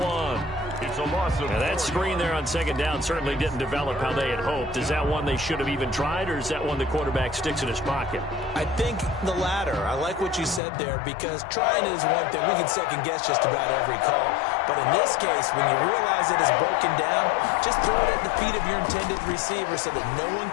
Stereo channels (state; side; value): drops out; right; at 10.6 s